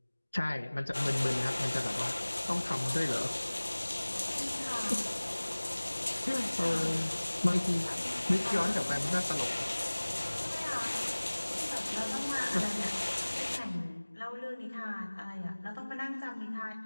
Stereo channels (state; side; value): inverted; both; correlation -1.00